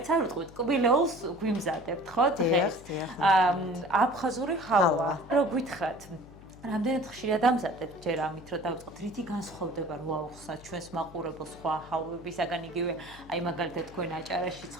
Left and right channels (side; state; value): left; noise; hum, 20 dB below the sound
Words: არ ვიტყვით, კბილეულს გვიმზადებთ ხო დღეს. აფხაზური ჰავა. რო გითხრათ რამდენად ხშირად ამზადებთ ჯერ ამით რომ დავიწყოთ რითი განსხვავდება რო აუხსნათ ჩვენს მაყურებელს სხვა ჰალვებისაგან იგივე აი მაგალითად თქვენ აჭარაში